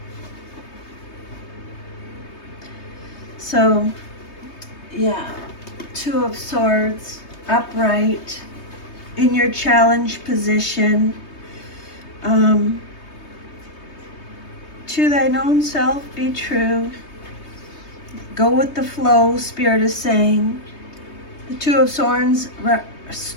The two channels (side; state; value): right; late; 3.2 ms